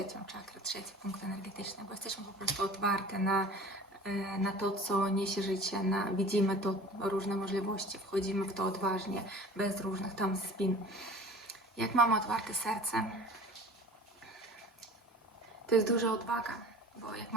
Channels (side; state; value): both; normal; correlation 0.42